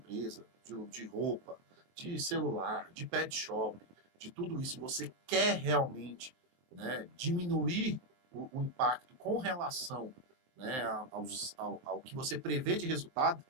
de roupa, de celular, de pet shop, de tudo isso, e você quer realmente, né, diminuir o impacto com relação, né, ao que você prevê de resultado,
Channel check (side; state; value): left; late; 23 ms